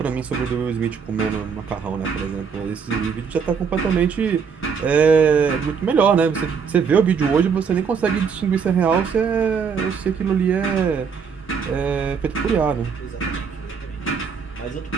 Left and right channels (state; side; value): quieter; left; 6.2 dB